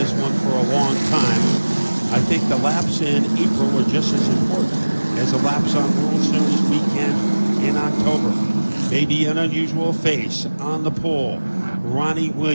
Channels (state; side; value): inverted; both; correlation -1.00